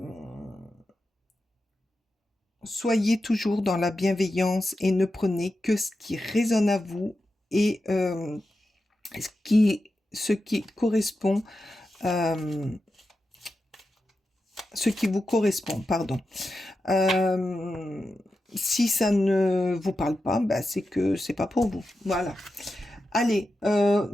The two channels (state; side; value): normal; both; correlation 0.90